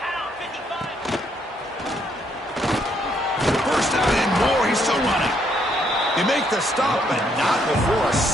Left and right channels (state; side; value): normal; both; correlation 0.72